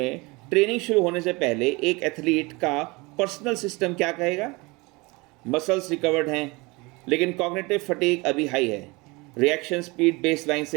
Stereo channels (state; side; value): quieter; left; 24.9 dB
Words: ट्रेनिंग शुरू होने से पहले एक एथलीट का पर्सनल सिस्टम क्या कहेगा? मसल्स रिकवर्ड हैं, लेकिन कॉग्निटिव फटीग अभी हाई है। रिएक्शन स्पीड बेसलाइन